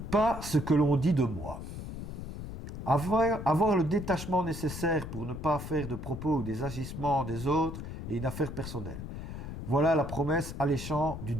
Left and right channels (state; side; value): noise; left; rumble, 8 dB below the sound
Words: pas ce que l'on dit de moi. Avoir le détachement nécessaire pour ne pas faire de propos ou des agissements des autres est une affaire personnelle. Voilà la promesse alléchante du